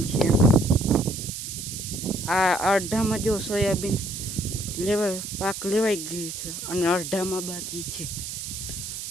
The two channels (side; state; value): right; noise; hiss, 7 dB below the sound